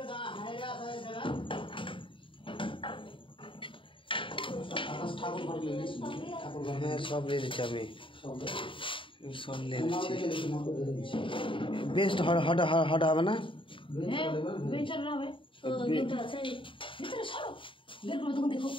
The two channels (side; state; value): right; late; 0.25 ms